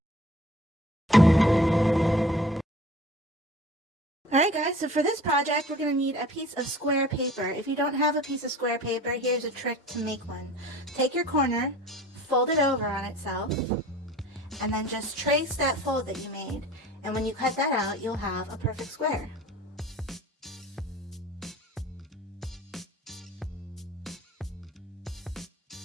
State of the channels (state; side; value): normal; both; correlation 0.45